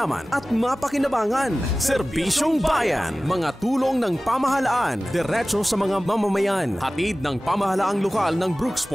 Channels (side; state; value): both; normal; correlation 0.97